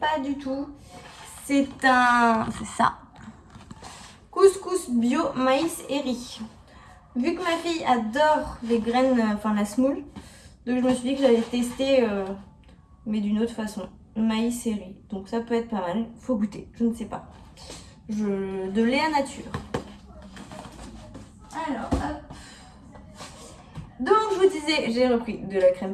du tout. C'est ça. Couscous bio maïs et riz. Vu que ma fille adore les graines, enfin la semoule, donc je me suis dit que j'allais tester, mais d'une autre façon. Maïs et riz. Donc ça peut être pas mal. Faut goûter, je ne sais pas. De Léa Nature. Alors, hop. Donc je vous disais, j'ai repris de la crème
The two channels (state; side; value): identical; both; correlation 1.00